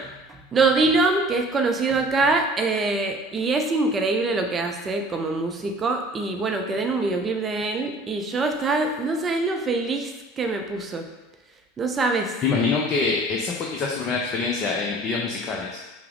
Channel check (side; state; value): both; normal; correlation 0.50